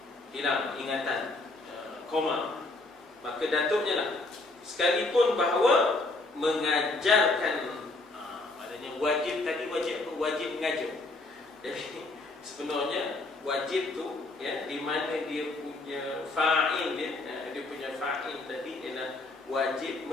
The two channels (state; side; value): quieter; right; 3.1 dB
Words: Hilang ingatan, koma, maka datuknya lah, sekalipun bahawa mengajarkan, maknanya wajib tadi, wajib mengajar. Jadi sebenarnya wajib tu ya, di mana dia punya fa'il dia punya fa'il tadi ialah wajib